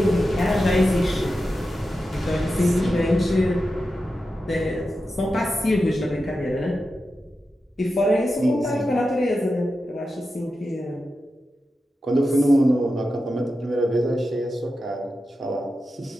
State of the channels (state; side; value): normal; both; correlation 0.90